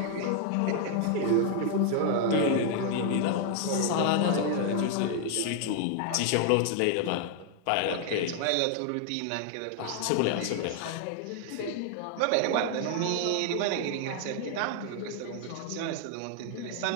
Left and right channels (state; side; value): different; both; correlation 0.00